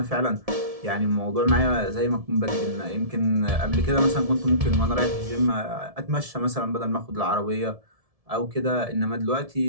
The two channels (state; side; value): late; left; 1.7 ms